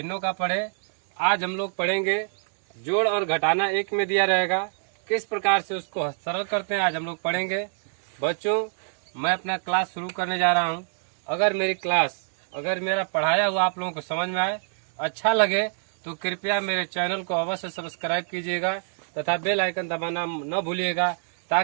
का पढ़े। आज हम लोग पढ़ेंगे जोड़ और घटाना एक में दिया रहेगा, किस प्रकार से उसको सरल करते हैं आज हम लोग पढ़ेंगे। बच्चों, मैं अपना क्लास शुरू करने जा रहा हूं। अगर मेरा पढ़ाया हुआ आप लोगों को समझ में आए, अच्छा लगे तो कृपया मेरे चैनल को अवश्य सब्सक्राइब कीजिएगा तथा बेल आइकन दबाना न भूलिएगा,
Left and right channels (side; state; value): left; silent; digital silence